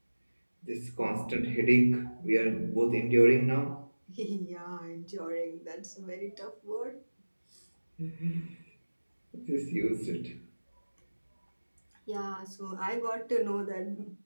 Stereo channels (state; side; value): inverted; both; correlation -1.00